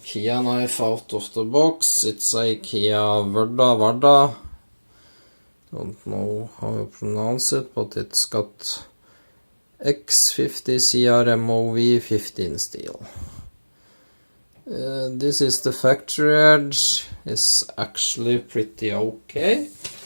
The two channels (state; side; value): inverted; both; correlation -1.00